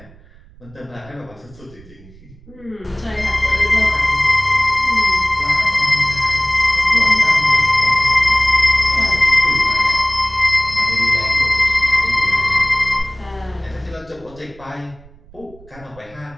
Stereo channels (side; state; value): right; noise; rumble, 23 dB below the sound